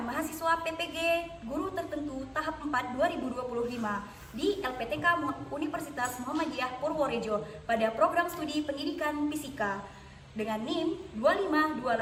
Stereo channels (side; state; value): both; identical; correlation 1.00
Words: PPG Guru Tertentu tahap 4 2025 di LPTK Universitas Muhammadiyah Purworejo pada program studi pendidikan fisika dengan NIM